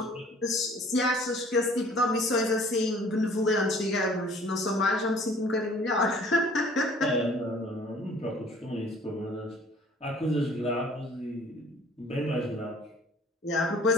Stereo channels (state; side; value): normal; both; correlation 0.53